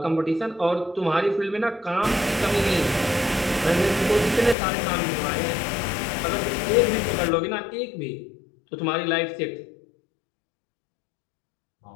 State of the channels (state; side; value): drops out; right; at 4.5 s